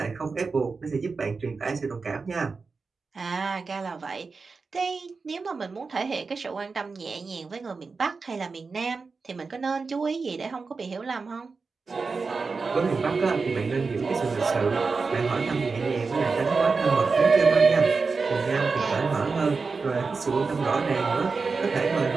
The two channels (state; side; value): quieter; left; 4.5 dB